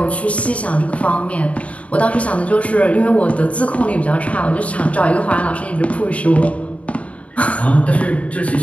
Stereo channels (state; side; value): late; right; 0.065 ms